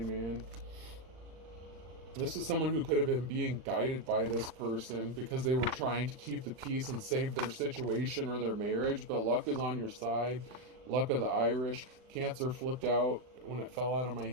man. This is someone who could have been being guided by this person because they were trying to keep the peace and save their situation or their marriage. But luck is on your side. Luck of the Irish. Cancer flipped out when it fell out of my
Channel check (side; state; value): left; late; 39 ms